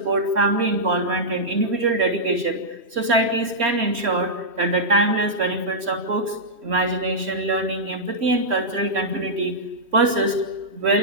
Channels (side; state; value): left; late; 3.1 ms